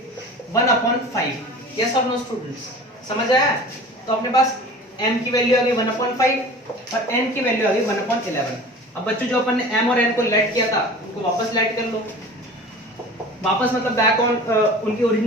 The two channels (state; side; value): normal; both; correlation 0.40